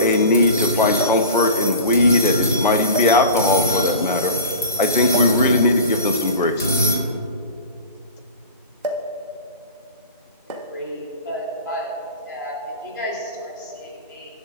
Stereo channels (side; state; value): both; inverted; correlation -0.35